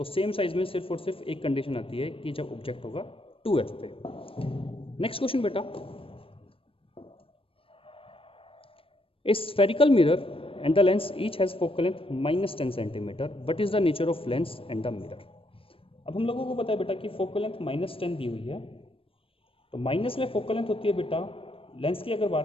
सेम साइज में सिर्फ और सिर्फ एक कंडीशन आती है कि जब ऑब्जेक्ट होगा 2f पे. नेक्स्ट क्वेश्चन बेटा, ए spherical mirror and the lens each has focal length -10 centimetre. What is the nature of lens and the mirror? अब हम लोगों को पता है बेटा कि फोकल लेंथ -10 दी हुई है, तो माइनस में फोकल लेंथ होती है बेटा. लेंस की अगर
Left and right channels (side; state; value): right; late; 0.26 ms